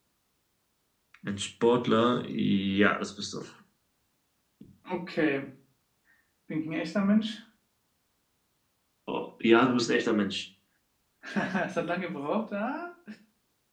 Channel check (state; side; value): identical; both; correlation 1.00